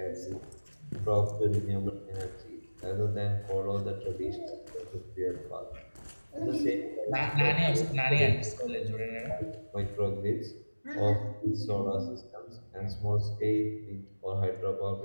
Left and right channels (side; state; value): both; inverted; correlation -1.00